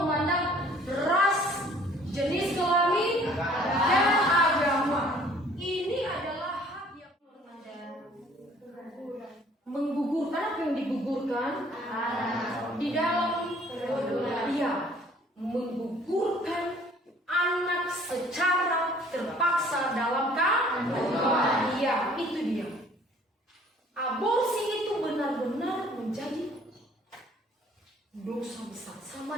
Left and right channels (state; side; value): normal; both; correlation 0.56